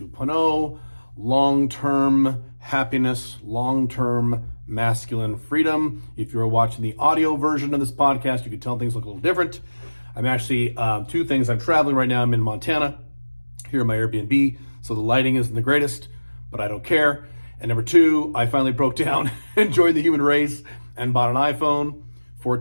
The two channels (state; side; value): inverted; both; correlation -1.00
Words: long-term happiness, long-term masculine freedom. If you're watching the audio version of this podcast, you can tell things look a little different. I'm actually, two things. I'm traveling right now. I'm in Montana, here in my Airbnb, so the lighting isn't the greatest, but I don't care. And number two, I finally broke down and joined the human race and bought an iPhone